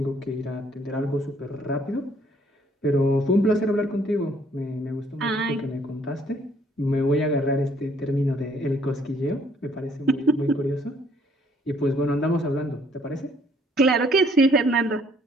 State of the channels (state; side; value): normal; both; correlation 0.64